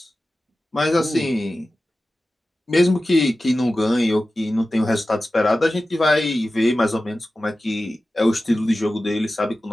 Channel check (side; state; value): both; normal; correlation 0.95